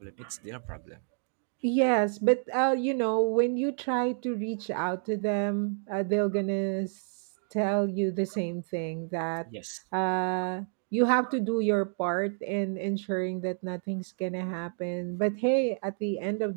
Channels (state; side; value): silent; left; 58 dB below the other